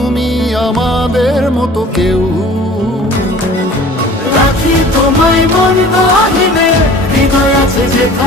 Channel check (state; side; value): normal; both; correlation 0.46